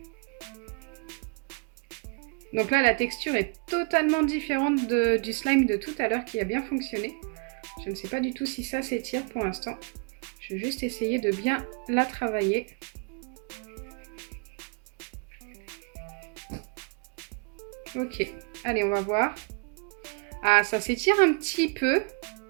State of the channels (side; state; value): left; quieter; 34.2 dB